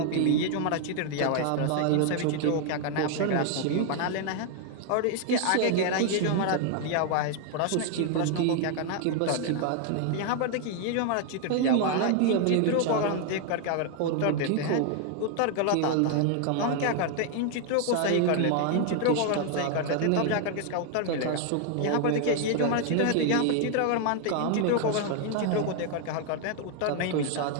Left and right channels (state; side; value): different; both; correlation 0.00